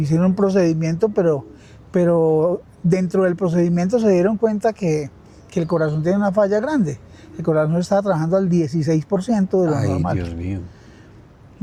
un procedimiento, pero dentro del procedimiento se dieron cuenta que el corazón tiene una falla grande. El corazón estaba trabajando al 16% de lo normal. Dios mío.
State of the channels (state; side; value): identical; both; correlation 1.00